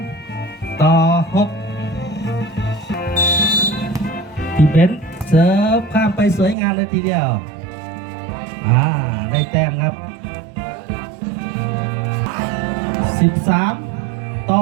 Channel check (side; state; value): left; drops out; at 6.6 s